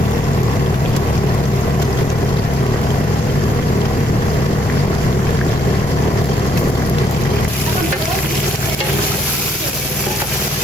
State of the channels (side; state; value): both; normal; correlation 0.73